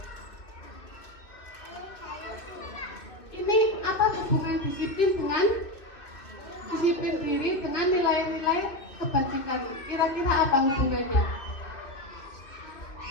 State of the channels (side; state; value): right; late; 2.6 ms